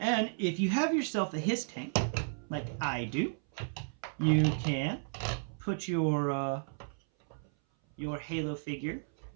if you have yourself a HISS tank, like I do, you can put your Halo figure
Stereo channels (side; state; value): left; silent; 56 dB below the other